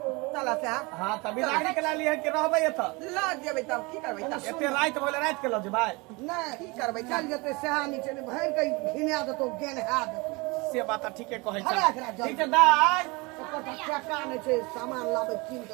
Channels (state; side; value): quieter; left; 26.4 dB